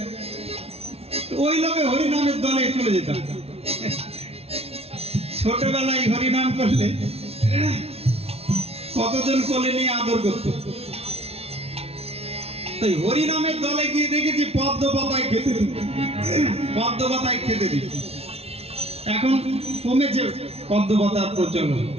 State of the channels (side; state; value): left; late; 0.30 ms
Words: ওই লোকে হরিনামের দলে চলে যেতাম। ছোটবেলায় হরিনাম করলে কতজন কোলে নিয়ে আদর করত। তাই হরিনামের দলে গিয়ে দেখেছি পদ্ম পাতায় খেতে দিত, পদ্ম পাতায় খেতে দিত। এখন কমেছে পদ্ম পাতার প্রচলন।